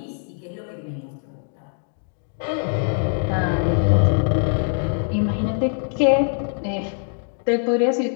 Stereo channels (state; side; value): silent; right; 61 dB below the other